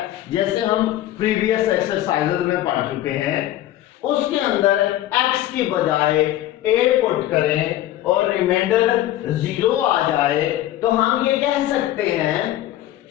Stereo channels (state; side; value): quieter; right; 13.8 dB